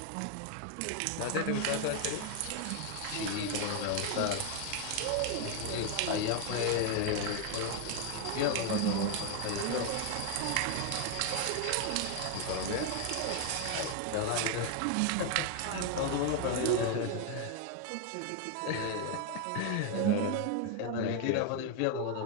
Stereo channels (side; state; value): both; different; correlation 0.01